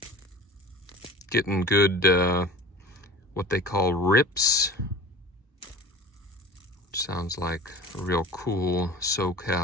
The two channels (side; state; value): both; normal; correlation 0.38